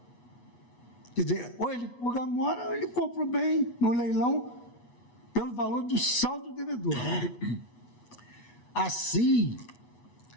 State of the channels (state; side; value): late; right; 8.2 ms